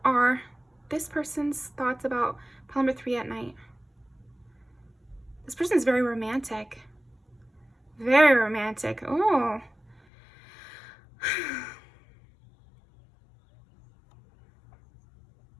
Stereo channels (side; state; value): right; drops out; at 10.0 s